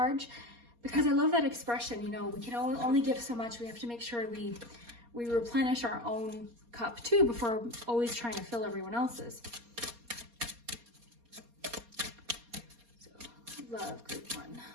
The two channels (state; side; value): late; left; 4.2 ms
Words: because I love that expression. You know, we can only give so much. We have to make sure we replenish our own cup too before always trying to fill everyone else's. So love group 1.